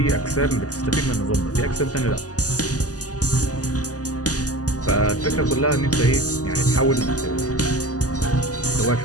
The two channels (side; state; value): right; late; 0.67 ms